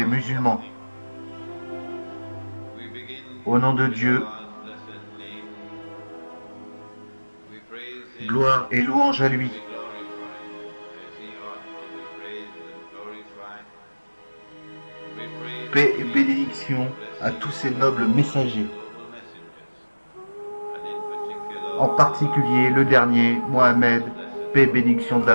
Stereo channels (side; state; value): both; inverted; correlation -1.00